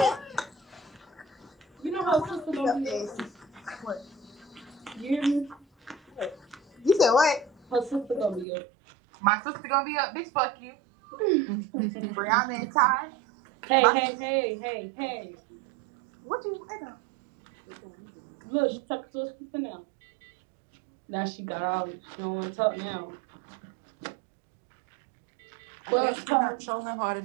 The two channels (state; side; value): drops out; left; at 8.5 s